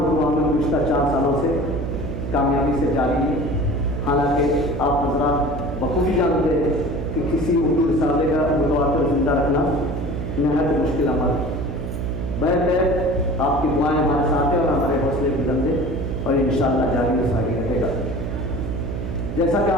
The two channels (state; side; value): noise; right; hum, 5 dB below the sound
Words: میں گزشتہ 4 سالوں سے کامیابی سے جاری ہے۔ حالانکہ آپ حضرات بخوبی جانتے ہیں کہ کسی اردو رسالے کا متواتر زندہ رکھنا نہایت مشکل عمل ہے۔ بہرکیف آپ کی دعائیں ہمارے ساتھ ہیں اور ہمارے حوصلے بلند ہیں اور انشاءاللہ جاری و ساری رہے گا۔ جیسا کہ